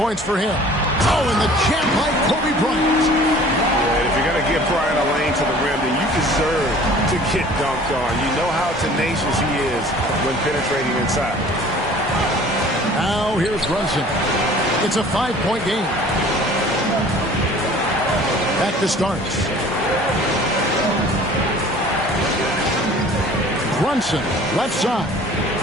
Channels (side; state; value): both; normal; correlation 0.48